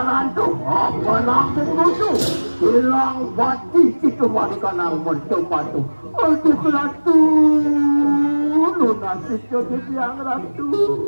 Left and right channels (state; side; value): inverted; both; correlation -1.00